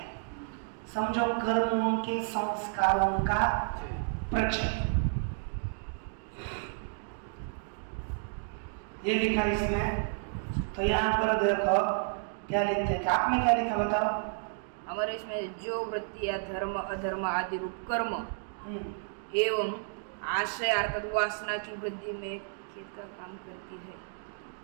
समझो कर्मों के संस्कारों का प्रचय। ये लिखा इसमें, तो यहाँ पर देखो क्या लिखते हैं, आपने क्या लिखा बताओ। हमारे इसमें जो वृत्तियां धर्म अधर्म आदि रूप कर्म एवं आशय अर्थात वासना की वृद्धि में खेत का काम करती है।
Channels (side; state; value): left; silent; 57 dB below the other